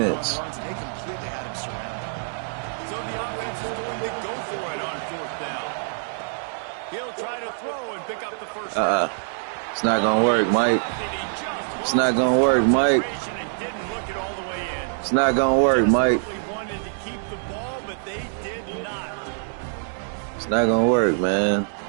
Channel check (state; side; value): silent; left; digital silence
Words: runs. They completely had him surrounded. So the offense is going to go for it on 4th down. He'll try to throw and pick up the first down. It's not going to work, Mike. It's not going to work, Mike. Didn't look it all the way in. It's not going to work, Mike. Desperately wanted to keep the ball, but they did not. It's not going to work, man.